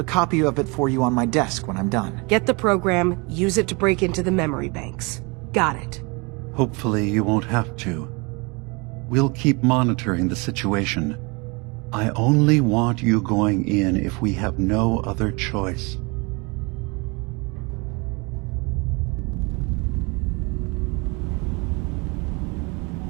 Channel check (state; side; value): quieter; left; 28.7 dB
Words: copy of it for you on my desk when I'm done. Get the program, use it to break into the memory banks. Got it. Hopefully you won't have to. We'll keep monitoring the situation. I only want you going in if we have no other choice.